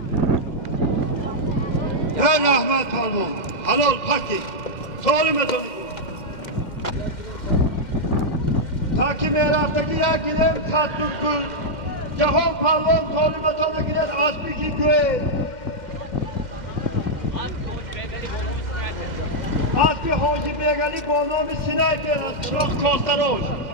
یا رحمت پالوان حلال پاکی سالمتون تا که میرفتگی یک گیرم تطور کن جهان پروان طالبتان گیرد اسبی که گوه اسبی حاجی بیگلی با نام سینه شلاخ کاستراش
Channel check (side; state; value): right; late; 2.1 ms